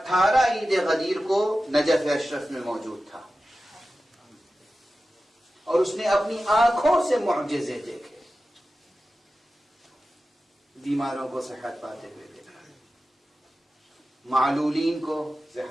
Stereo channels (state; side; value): normal; both; correlation 0.94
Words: عید غدیر کو نجف اشرف میں موجود تھا، اور اس نے اپنی آنکھوں سے معجزے دیکھے، بیماروں کو صحت پاتے ہوئے دیکھا، معلولین کو